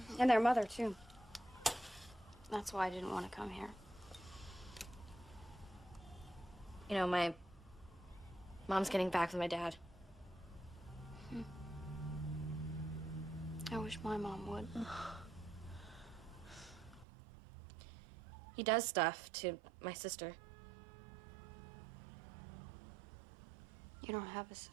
And their mother, too. That's why I didn't want to come here. You know, my mom's getting back with my dad. I wish my mom would. He does stuff to my sister. You don't have a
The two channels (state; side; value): drops out; left; at 17.1 s